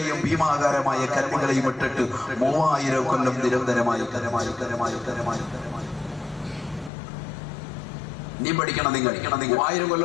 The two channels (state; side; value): drops out; right; at 6.9 s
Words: ഭീമാകാരമായ കല്ലുകളെയും ഇട്ടിട്ട് 3000 കൊല്ലം നിരന്തരമായി നീ പഠിക്കണം. നിങ്ങൾ 3000 കൊല്ലം